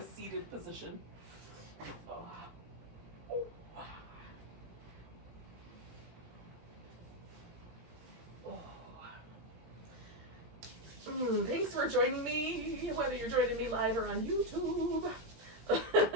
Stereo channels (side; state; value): left; late; 17 ms